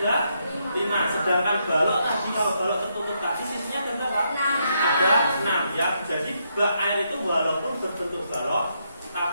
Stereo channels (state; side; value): inverted; both; correlation -0.78